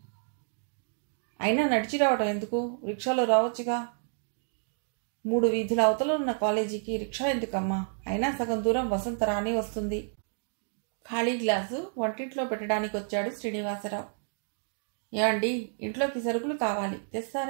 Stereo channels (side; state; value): left; silent; digital silence